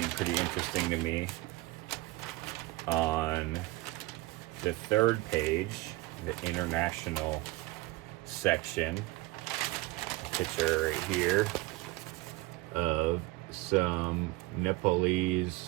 pretty interesting to me. On the third page, the international section, a picture right here of some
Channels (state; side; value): quieter; left; 20.8 dB